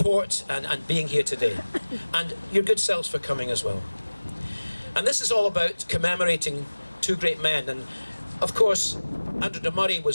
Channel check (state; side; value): inverted; both; correlation -1.00